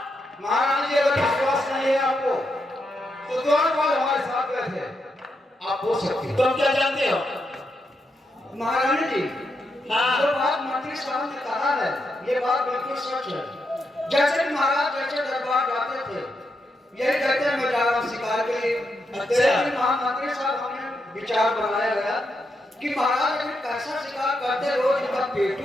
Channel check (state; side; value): normal; both; correlation 0.83